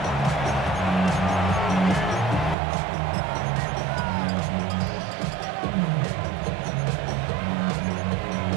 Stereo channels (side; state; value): left; drops out; at 2.6 s